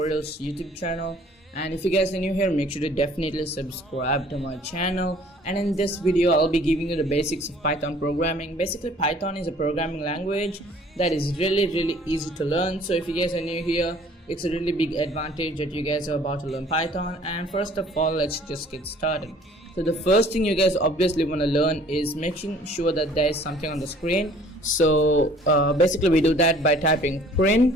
YouTube channel. And if you guys are new here, make sure to definitely subscribe to my channel. And in this video, I'll be giving you the basics of Python programming. Basically, Python is a programming language that is really easy to learn. So if you guys are new here, it's a really big advantage that you guys are about to learn Python. And first of all, let's just get started. So the first thing you guys obviously want to learn is making sure that there is something on the screen. So basically we do that by typing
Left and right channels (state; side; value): normal; both; correlation 0.54